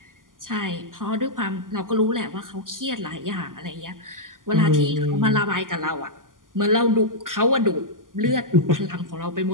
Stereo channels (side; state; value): left; late; 0.89 ms